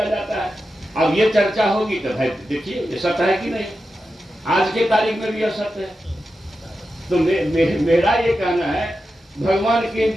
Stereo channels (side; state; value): both; normal; correlation 0.90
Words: जाता है। अब ये चर्चा होगी तो भाई देखिए ये सत्य है कि नहीं। आज के तारीख में भी यह सत्य है। तो मेरा ये कहना है, भगवान के